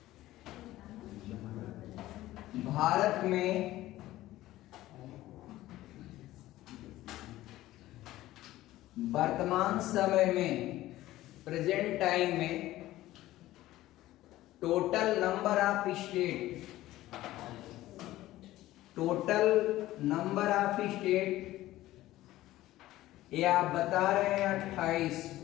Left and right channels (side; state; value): right; quieter; 15.8 dB